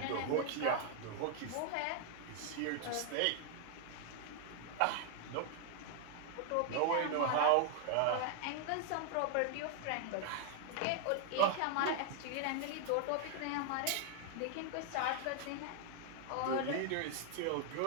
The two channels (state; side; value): different; both; correlation 0.00